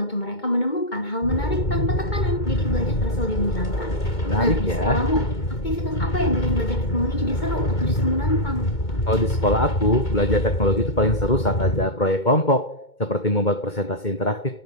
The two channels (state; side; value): late; right; 2.2 ms